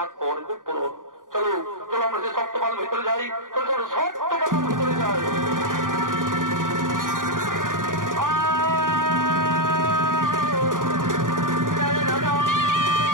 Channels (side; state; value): left; late; 0.89 ms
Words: করবে পূরণ। চলো চলো, আমরা যে সপ্তপাল ভিতরে যাই, চলো চলো সপ্তপাল ভিতরে যাই।